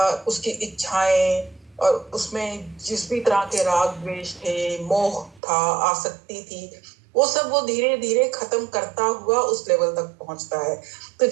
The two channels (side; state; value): left; drops out; at 5.4 s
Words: इच्छाएं, और उसमें जिस भी तरह के राग द्वेष थे, मोह था, आसक्ति थी, वो सब वो धीरे धीरे खत्म करता हुआ उस लेवल तक पहुंचता है। तो